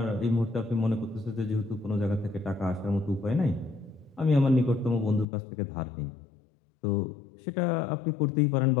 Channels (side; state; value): right; drops out; at 5.2 s